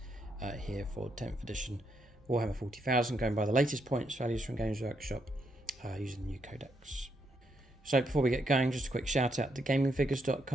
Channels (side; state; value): both; normal; correlation 0.78